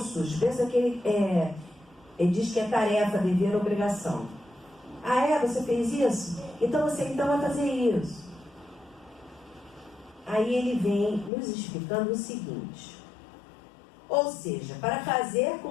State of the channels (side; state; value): right; drops out; at 11.3 s